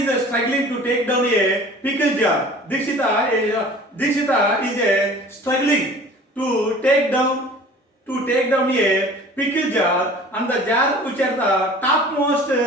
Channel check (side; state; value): both; normal; correlation 0.45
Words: struggling to take down a pickle jar. Dikshita is struggling to take down a pickle jar, and the jar which are the topmost